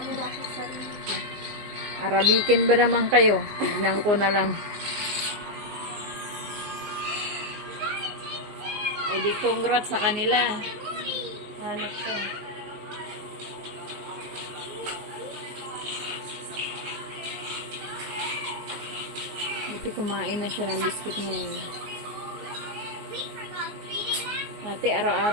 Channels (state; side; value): late; left; 19 ms